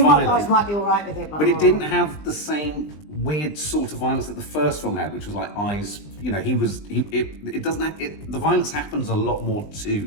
You guys might be alright with it, but it didn't have the same weird sort of violence that the first film had, which was like eyes, you know, it doesn't have, the violence happens a lot more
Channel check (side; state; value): right; late; 20 ms